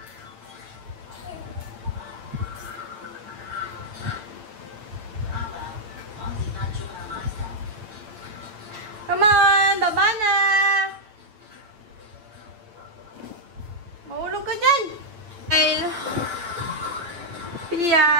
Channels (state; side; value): late; left; 8.9 ms